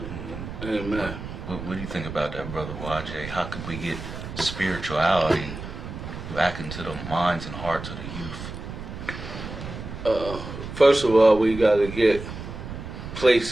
Amen. What do you think about that, Brother YJ? How could we get spirituality back into the minds and hearts of the youth? First of all, we got to get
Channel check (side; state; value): right; noise; rumble, 9 dB below the sound